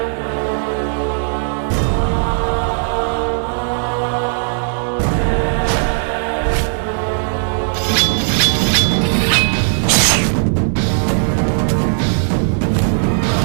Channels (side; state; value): left; silent; digital silence